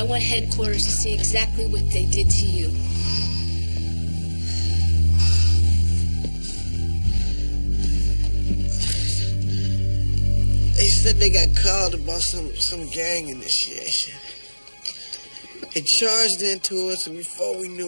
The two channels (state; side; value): inverted; both; correlation -1.00